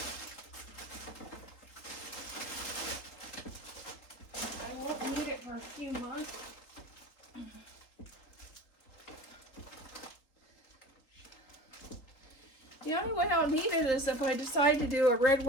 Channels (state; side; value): late; right; 3.9 ms